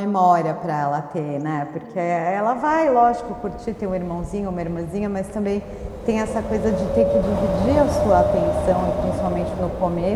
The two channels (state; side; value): identical; both; correlation 1.00